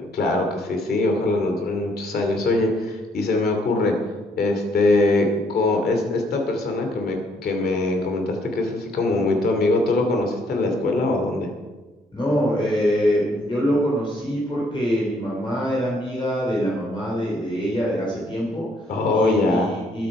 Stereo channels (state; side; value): normal; both; correlation 0.68